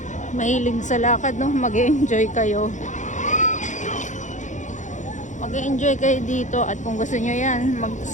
mahilig sa lakad, no, mag-enjoy kayo. Mag-enjoy kayo dito at kung gusto nyo yan,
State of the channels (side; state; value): right; late; 0.35 ms